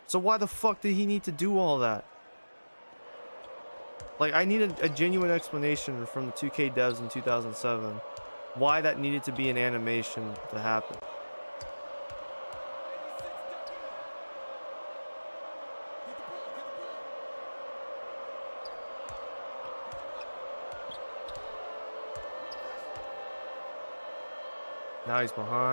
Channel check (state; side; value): inverted; both; correlation -1.00